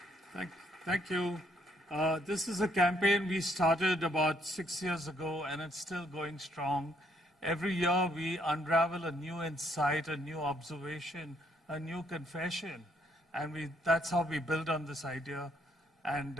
Thank you. This is a campaign we started about 6 years ago, and it's still going strong. Every year we unravel a new insight, a new observation, a new confession, and that's how we build on this idea.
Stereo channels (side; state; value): both; normal; correlation 0.69